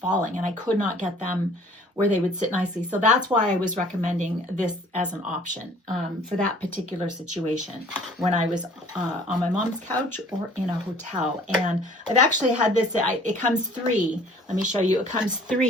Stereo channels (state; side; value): normal; both; correlation 0.53